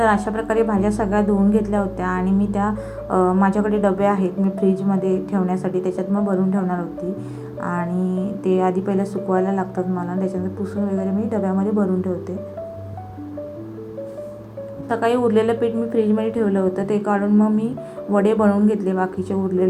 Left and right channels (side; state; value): both; identical; correlation 1.00